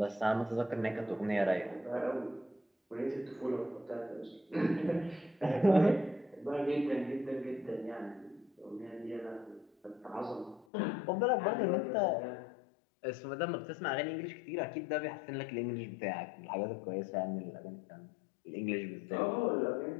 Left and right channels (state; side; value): drops out; right; at 10.7 s